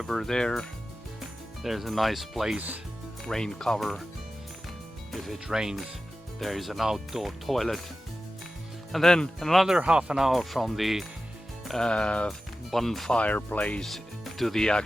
there's a nice place, rain cover. If it rains, there is an outdoor toilet. And then another half an hour from the bonfire place to the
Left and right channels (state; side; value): normal; both; correlation 0.94